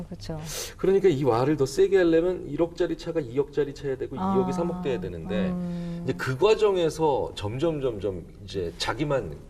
그렇죠. 그러니까 이 와를 더 세게 하려면 1억짜리 차가 2억짜리 차야 되고 2억이 3억 돼야 되는데 이제 그 과정에서 점점 이제 자기만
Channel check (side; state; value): both; identical; correlation 1.00